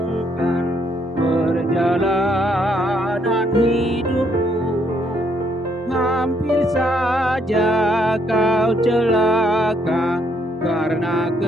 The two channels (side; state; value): both; normal; correlation 0.70